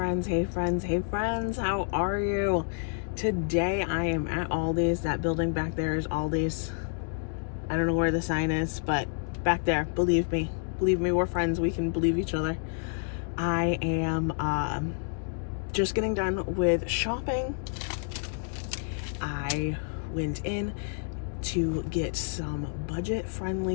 hey friends, hey friends, how are you? Today I am at Aldi's. That building back there is Aldi's. I don't know where the sign is, but back there, believe me, we're friends. We can believe each other. I am just getting done with shopping. I went in to get some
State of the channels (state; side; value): silent; right; digital silence